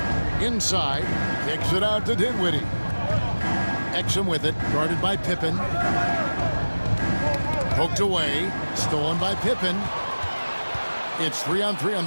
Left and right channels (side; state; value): both; inverted; correlation -1.00